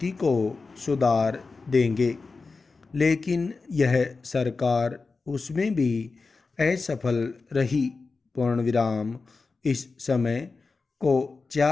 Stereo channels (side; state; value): right; quieter; 4.1 dB